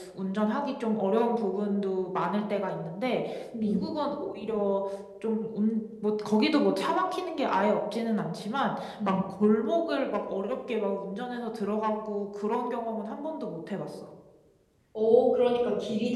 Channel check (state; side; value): identical; both; correlation 1.00